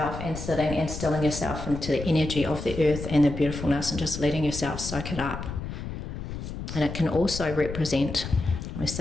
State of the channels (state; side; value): noise; left; rumble, 7 dB below the sound